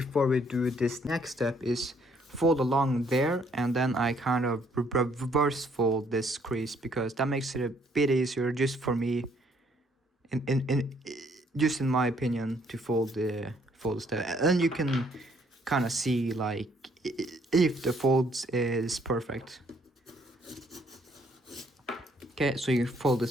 we do this next step is fold along there, and then I kind of reverse fold this crease, because that makes it a bit easier just for me, just in my opinion, to fold the step. And you can kind of see like if the folds is perfect. Okay, so you fold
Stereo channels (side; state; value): both; normal; correlation 0.66